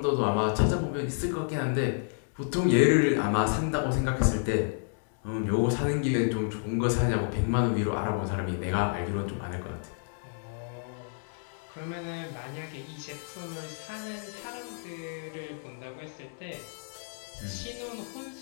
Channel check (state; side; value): silent; right; digital silence